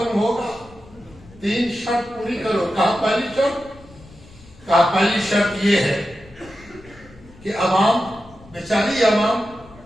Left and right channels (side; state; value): left; noise; rumble, 23 dB below the sound